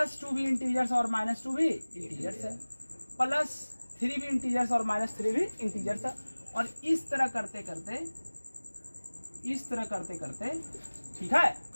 भी इंटीजर्स और -2 भी इंटीजर्स है, +3 भी इंटीजर्स और -3 भी इंटीजर्स है। और इस तरह करते करते ठीक है,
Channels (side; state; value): both; inverted; correlation -1.00